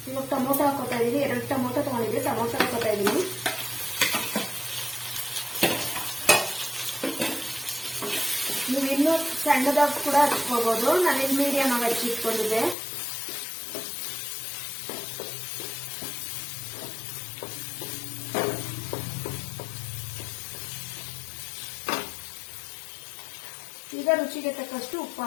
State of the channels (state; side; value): drops out; right; at 12.8 s